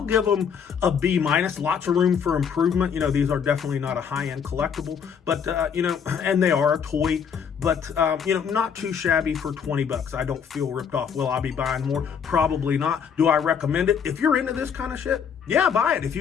give them a B-. Lots of room for improvement. You know, these are definitely not a high-end collectible, but, you know, and they are a toy, but, you know, not too shabby for $20. I don't feel ripped off. Will I be buying more? Probably not. Do I recommend it? If you're into this kind of shit, yeah, buy it. If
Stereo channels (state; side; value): quieter; right; 7.1 dB